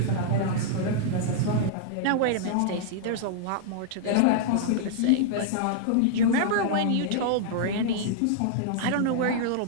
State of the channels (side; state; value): both; different; correlation -0.01